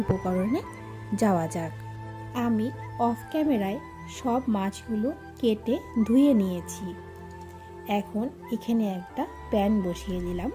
উপকরণে যাওয়া যাক। আমি অফ ক্যামেরায় সব মাছগুলো কেটে ধুয়ে নিয়েছি। এখন এখানে একটা প্যান বসিয়ে দিলাম।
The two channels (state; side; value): identical; both; correlation 1.00